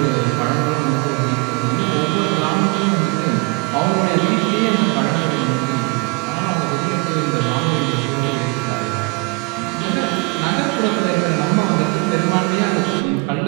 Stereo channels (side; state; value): left; quieter; 29.2 dB